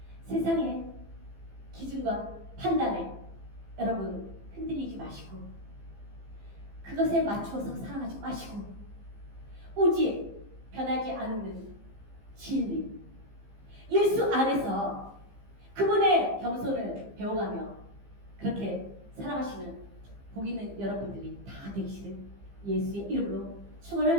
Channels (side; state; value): left; late; 15 ms